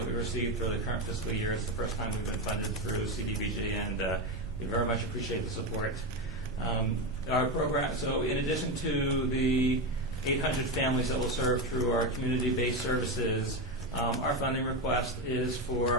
that we received for the current fiscal year. It's the first time we've been funded through CDBG, and we very much appreciate the support. Our program, so in addition to the 800 families that will serve through our community-based services, our funding request is for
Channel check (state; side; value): normal; both; correlation 0.14